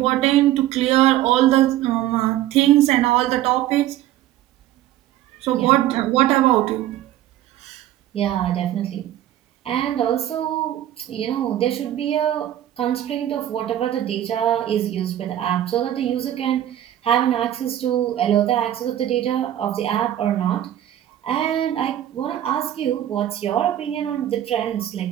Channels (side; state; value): left; quieter; 12.7 dB